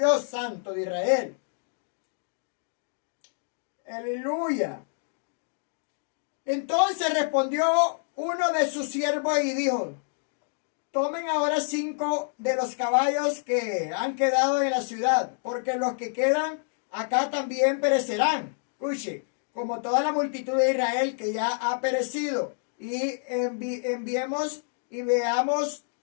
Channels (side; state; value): right; silent; digital silence